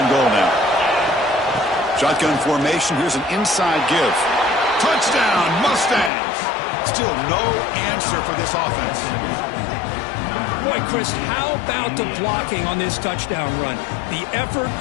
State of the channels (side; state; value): right; drops out; at 6.1 s